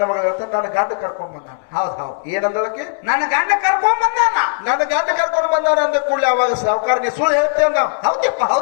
ಮಗಳ ಹೇಳ್ತಾನೆ, ನನ್ನ ಗಂಡ ಕರ್ಕೊಂಡ್ ಬಂದಾನ. ಹೌದ್ ಹೌದ್. ಏನಂದಳಕ್ಕೆ? ನನ್ನ ಗಂಡ ಕರ್ಕೊಂಡ್ ಬಂದಾನ. ನನ್ನ ಗಂಡ ಕರ್ಕೊಂಡ್ ಬಂದಾನ ಅಂದ ಕೂಡಲೇ ಅವಾಗ ಸಾವುಕಾರ, ನೀ ಸುಳ್ಳು ಹೇಳ್ತೇವೆ ನಾವು. ಹೌದಪ್ಪ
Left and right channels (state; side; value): silent; right; digital silence